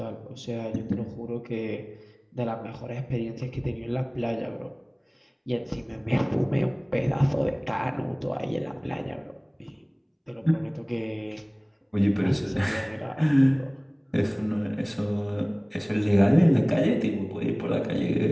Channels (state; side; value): identical; both; correlation 1.00